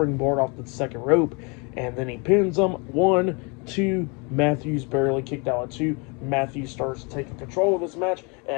off the second rope, and then he pins him. 1, 2, Matthews barely kicked out at 2. Matthews starts taking control of this match, and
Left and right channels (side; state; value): right; quieter; 31.4 dB